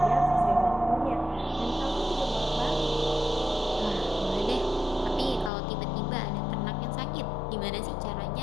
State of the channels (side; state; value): right; drops out; at 5.5 s